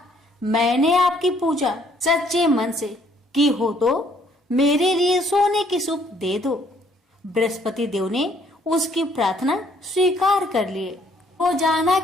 मैंने आपकी पूजा सच्चे मन से की हो तो मेरे लिए सोने की सूप दे दो। बृहस्पति देव ने उसकी प्रार्थना स्वीकार कर लिए। रोजाना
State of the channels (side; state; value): both; normal; correlation 0.64